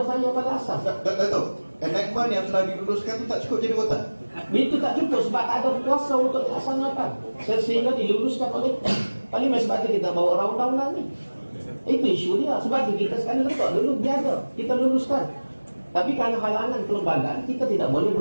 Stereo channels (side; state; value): both; inverted; correlation -1.00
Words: saya pada asas. Dato', enactment yang telah diluluskan tu tak cukup jadi rotan? Itu tak cukup sebab tak ada kuasa untuk dilaksanakan. Sehingga diluluskan oleh Parlimen. Sebab itu kita bawa undang-undang ni. Itu isu dia. Sebab itu kita sekarang letak dulu biasa kita luluskan. Tapi kerana halangan kelembagaan, kita tidak boleh